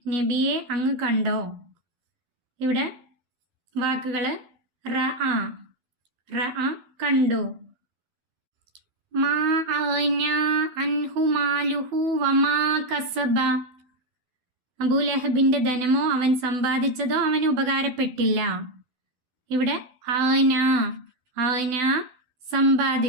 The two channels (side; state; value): left; late; 12 ms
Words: നബിയെ അങ്ങ് കണ്ടോ? ഇവിടെ വാക്കുകൾ റഅ റഅ കണ്ടു. മാ അഗ്നാ അൻഹു മാലുഹു വമാ കസബ, അബൂലഹബിന്റെ ധനമോ അവൻ സമ്പാദിച്ചതോ അവന് ഉപകാരപ്പെട്ടില്ല. ഇവിടെ അഗ്നാ അഗ്നാ